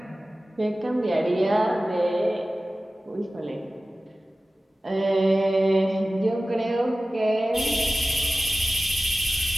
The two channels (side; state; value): both; normal; correlation 0.96